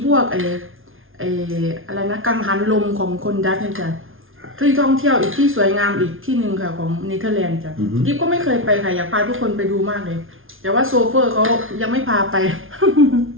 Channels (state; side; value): late; left; 0.59 ms